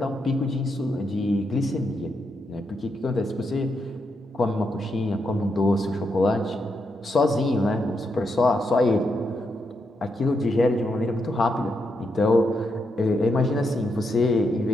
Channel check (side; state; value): both; normal; correlation 0.81